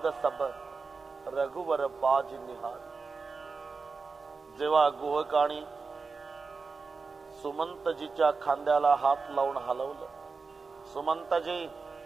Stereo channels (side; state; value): left; quieter; 4.5 dB